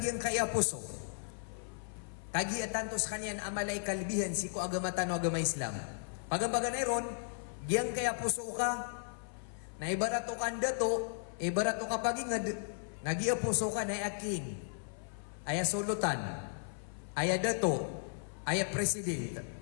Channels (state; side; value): silent; right; 54 dB below the other